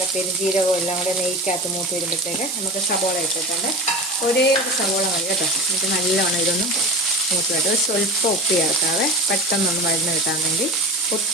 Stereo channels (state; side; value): noise; right; hiss, 6 dB below the sound